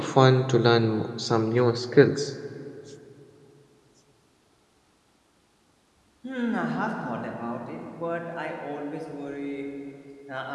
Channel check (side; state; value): both; identical; correlation 1.00